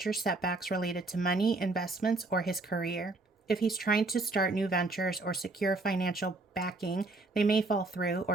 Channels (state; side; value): quieter; left; 3.2 dB